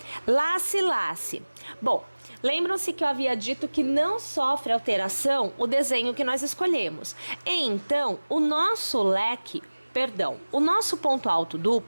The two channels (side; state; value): both; inverted; correlation -1.00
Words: Lace, lace. Bom, lembram-se que eu havia dito que não sofre alteração o desenho que nós escolhemos. Então, o nosso ponto alto